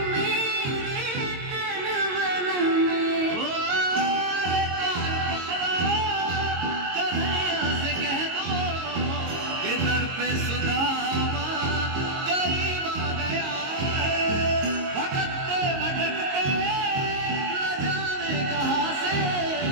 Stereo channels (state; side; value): late; left; 22 ms